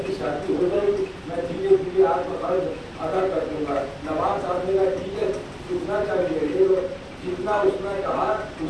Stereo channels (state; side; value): identical; both; correlation 1.00